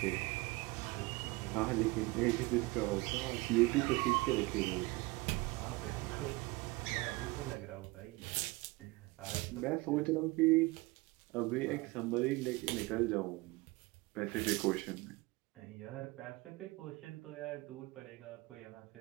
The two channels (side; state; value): left; quieter; 23.0 dB